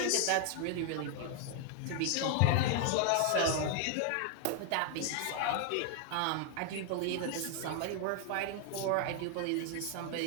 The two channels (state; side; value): different; both; correlation 0.00